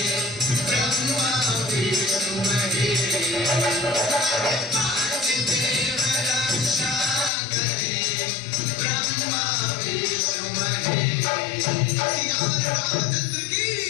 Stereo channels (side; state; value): right; drops out; at 7.3 s